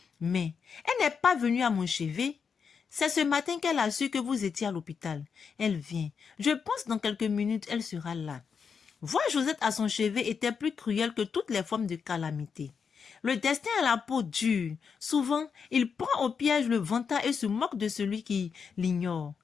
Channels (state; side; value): quieter; right; 6.2 dB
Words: Mais, elle n'est pas venue à mon chevet. C'est ce matin qu'elle a su que vous étiez à l'hôpital. Elle vient. Je pense dans quelques minutes, elle sera là. » Voir Josette à son chevet était plus cruel que toutes les formes de calamité. Le destin a la peau dure. Souvent, il prend au piège le vantard et se moque de celui qui l'ignore.